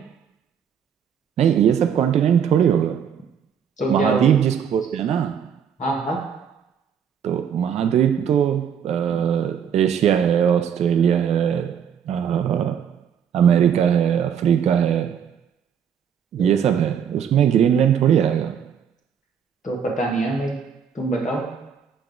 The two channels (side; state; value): left; quieter; 7.9 dB